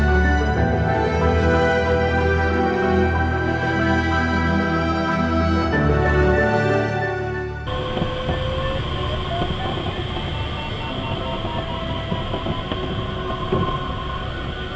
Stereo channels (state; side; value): identical; both; correlation 1.00